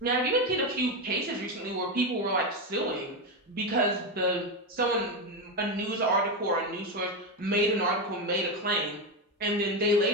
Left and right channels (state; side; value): normal; both; correlation 0.11